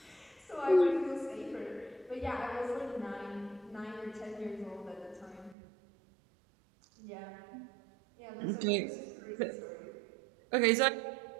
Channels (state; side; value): drops out; left; at 5.6 s